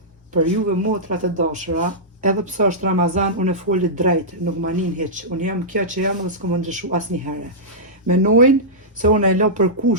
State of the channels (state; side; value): normal; both; correlation -0.13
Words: Për juve motrat e dashura, edhe pse është Ramazan, unë e foli drejt, nuk ma nin hiç. Unë jam kjo që jam dhe s'kom më ndryshu asnjëherë. Menojnë se unë e lo për